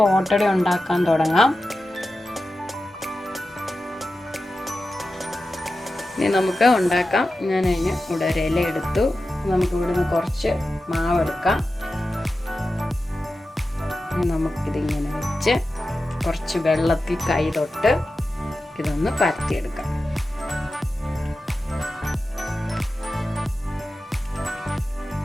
ഓട്ടട ഉണ്ടാക്കാൻ തുടങ്ങാം. ഇനി നമുക്ക് ഉണ്ടാക്കാം. ഞാൻ അതിന് ഇവിടെ ഒരു ഇല എടുത്തു. നമുക്ക് ഇവിടുന്ന് കുറച്ച് മാവ് എടുക്കാം. നമുക്കിതിങ്ങനെ വെച്ച് കുറച്ച് വെള്ളത്തിൽ കൈ തൊട്ട് ഇതൊന്ന് പരത്തിയെടുക്കാം.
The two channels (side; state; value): both; normal; correlation 0.93